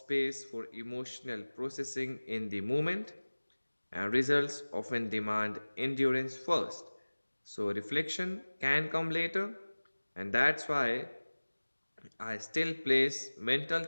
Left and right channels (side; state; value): both; inverted; correlation -1.00